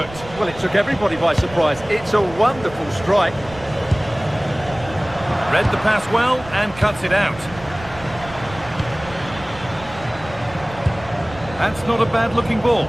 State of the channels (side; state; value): right; noise; rumble, 16 dB below the sound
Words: Well, it took everybody by surprise. It's a wonderful strike. Read the pass well and cuts it out. That's not a bad-looking ball.